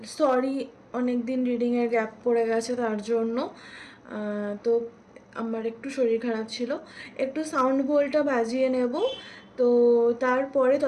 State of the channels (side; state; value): both; identical; correlation 1.00